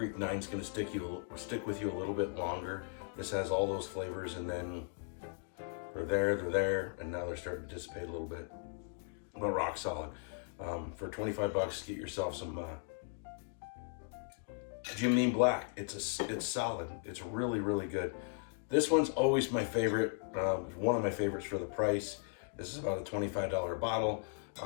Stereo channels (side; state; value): right; silent; 53 dB below the other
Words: 9 is going to stick with you a little bit longer. This has all those flavors, and then they're there, and now they're starting to dissipate a little bit. But rock solid. For 25 bucks, get yourself some Jim Beam Black. It's solid. It's really, really good. This one's always my favorite. One of my favorites for the price. This is about a $25 bottle.